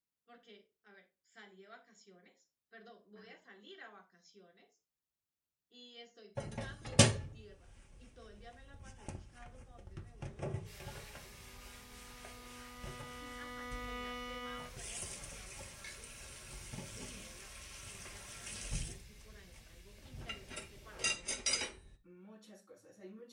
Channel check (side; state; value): both; identical; correlation 1.00